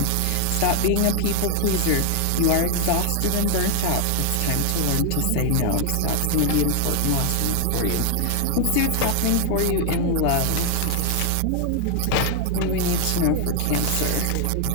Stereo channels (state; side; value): different; both; correlation 0.00